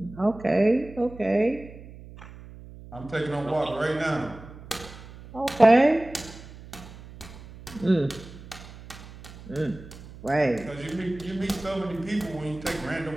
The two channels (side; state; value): right; noise; hum, 17 dB below the sound